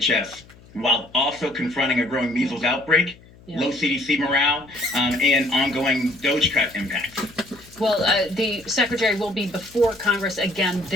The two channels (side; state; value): left; noise; hum, 24 dB below the sound